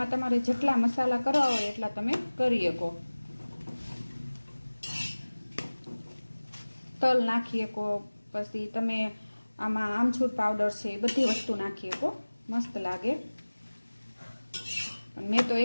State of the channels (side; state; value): both; inverted; correlation -1.00